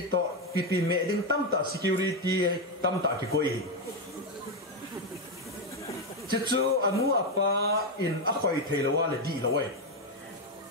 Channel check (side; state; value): both; normal; correlation 0.06